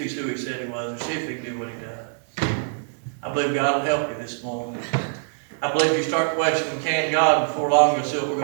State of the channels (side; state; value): left; silent; digital silence